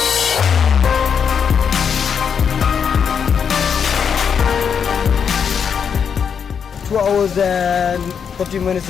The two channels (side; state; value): right; quieter; 7.0 dB